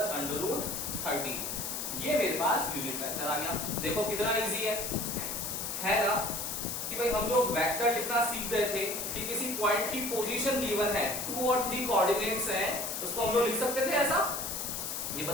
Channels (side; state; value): left; noise; hiss, 3 dB below the sound